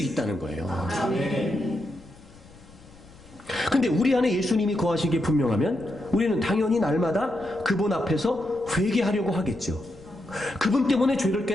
거예요. 근데 우리 안에 예수님이 거하신 게 분명하면 우리는 당연히 날마다 그분 앞에서 회개하려고 하겠죠. 그분 때문에 죄를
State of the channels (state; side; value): noise; left; rumble, 23 dB below the sound